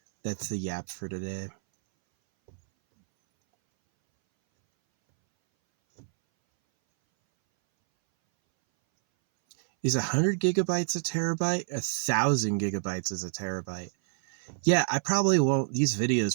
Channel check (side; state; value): left; silent; 59 dB below the other